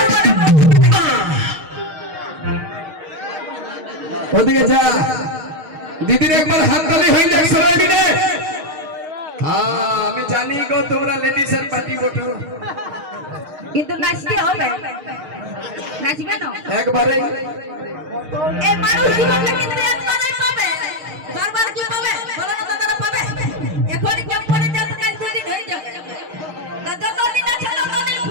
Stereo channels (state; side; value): late; left; 6.4 ms